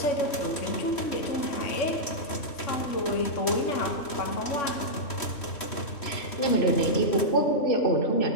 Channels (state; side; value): late; right; 3.1 ms